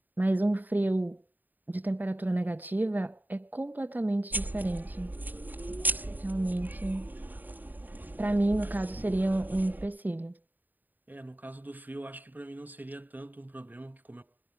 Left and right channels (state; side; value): late; left; 0.087 ms